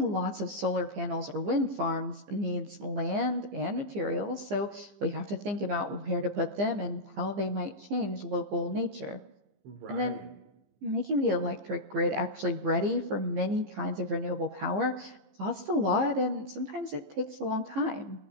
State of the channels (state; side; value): late; left; 14 ms